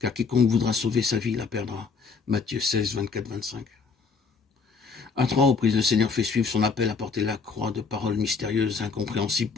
quiconque voudra sauver sa vie la perdra. Matthieu 16, 24, 25. À 3 reprises, le Seigneur fait suivre son appel à porter la croix de paroles mystérieuses, incompréhensibles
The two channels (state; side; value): quieter; right; 5.0 dB